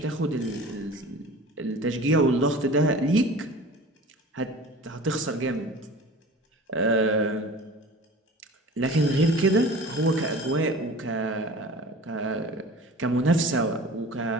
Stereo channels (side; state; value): both; normal; correlation 0.40